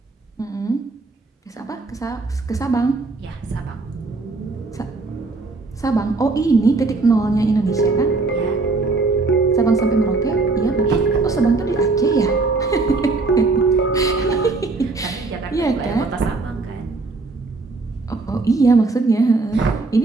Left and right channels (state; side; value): quieter; left; 3.7 dB